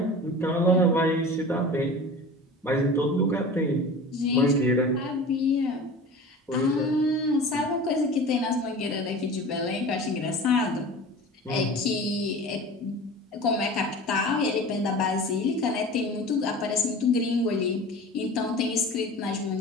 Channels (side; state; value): both; normal; correlation 0.37